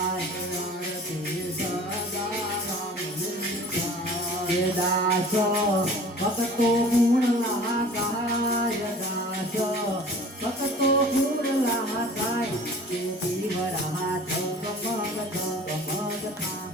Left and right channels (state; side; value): normal; both; correlation 0.45